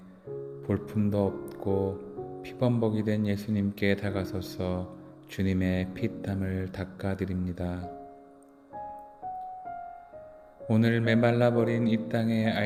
볼품도 없고 피범벅이 된 예수님께 다가서서 주님의 피땀을 닦아드립니다. 오늘 메말라버린 이 땅의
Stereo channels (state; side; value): identical; both; correlation 1.00